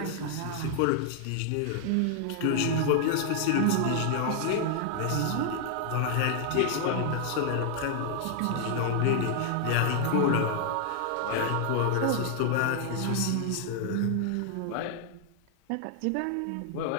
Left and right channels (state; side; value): different; both; correlation 0.00